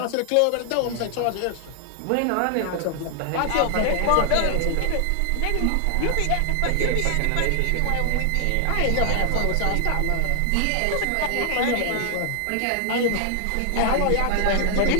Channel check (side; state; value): both; different; correlation 0.00